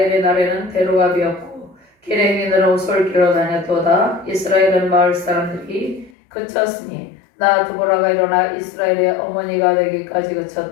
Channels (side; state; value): right; drops out; at 6.1 s